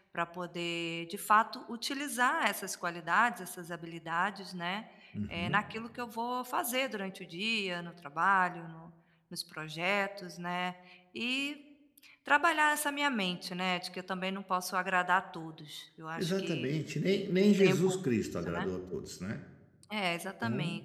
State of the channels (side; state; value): both; identical; correlation 1.00